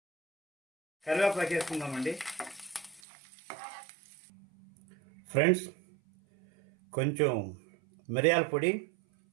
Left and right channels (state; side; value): drops out; left; at 3.0 s